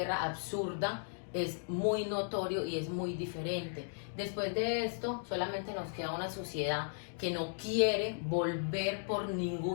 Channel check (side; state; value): right; silent; digital silence